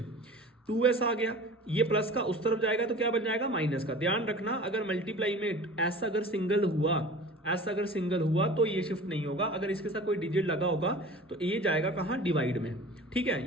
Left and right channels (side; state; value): both; normal; correlation 0.40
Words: 2s आ गया, ये प्लस का उस तरफ जाएगा तो क्या बन जाएगा, माइनस का। ध्यान रखना, अगर मल्टीप्लाई में ऐसा अगर सिंगल हुआ तो ये शिफ्ट नहीं होगा, अगर इसके साथ कोई डिजिट लगा होगा तो ये जाएगा कहाँ, डिवाइड में, ठीक